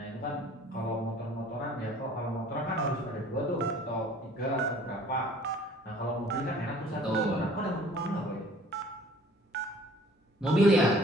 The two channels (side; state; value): both; normal; correlation 0.52